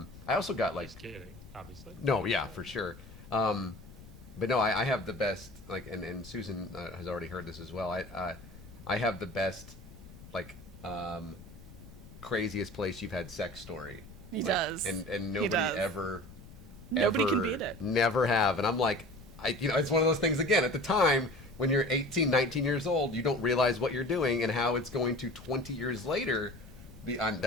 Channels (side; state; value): left; noise; rumble, 18 dB below the sound